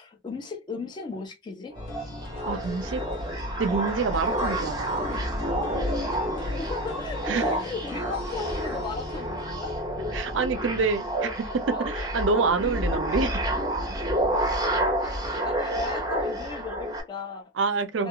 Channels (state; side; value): normal; both; correlation 0.19